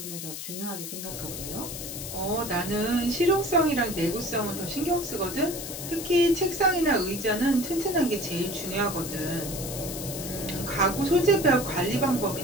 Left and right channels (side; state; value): left; noise; hiss, 8 dB below the sound